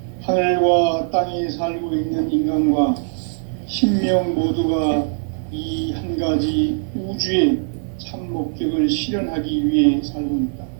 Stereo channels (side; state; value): left; silent; digital silence